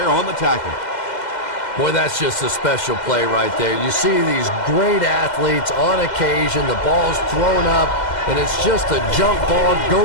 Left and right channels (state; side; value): late; right; 2.0 ms